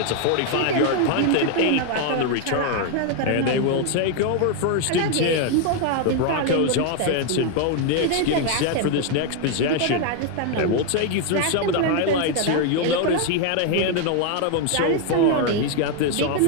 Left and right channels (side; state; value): both; different; correlation 0.01